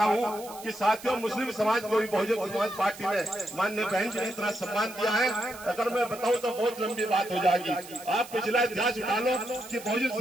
हूँ कि साथियों, मुस्लिम समाज को भी बहुजन समाज पार्टी ने माननीय बहन जी ने इतना सम्मान दिया है। अगर मैं बताऊं तो बहुत लंबी बात हो जाएगी। आप पिछला इतिहास उठा लो कि बहुजन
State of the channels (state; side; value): noise; right; hiss, 16 dB below the sound